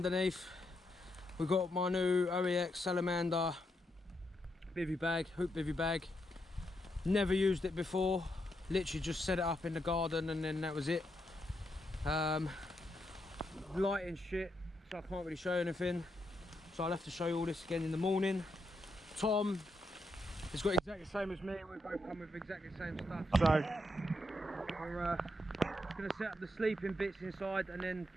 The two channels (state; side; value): normal; both; correlation 0.81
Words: we've got my new OEX Salamander bivvy bag, hoop bivvy bag. Never used it before, literally just set it up in the garden and then that was it. Lighting shit, so I can't really show you anything, so I'll have to show you all this again in the morning. Tom has got exactly the same as me, we both come with exactly the same stuff, so we're going to set up the sleeping bits inside and then